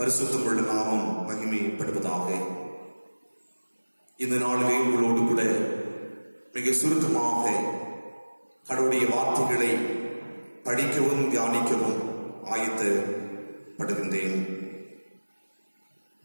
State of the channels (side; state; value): both; inverted; correlation -1.00